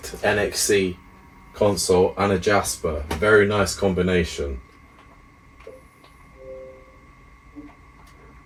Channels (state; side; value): identical; both; correlation 1.00